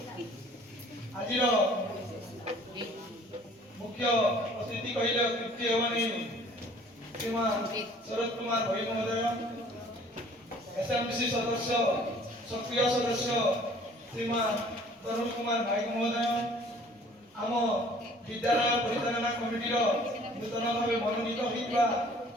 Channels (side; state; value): both; normal; correlation 0.53